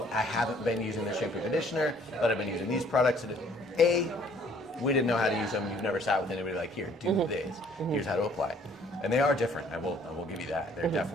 I haven't been using the shampoo conditioner, but I've been using these products, and we didn't know how to use them. You've never sat with anybody like, here, do this. Here's how to apply. And they are different. I will give you that. They're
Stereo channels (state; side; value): normal; both; correlation 0.59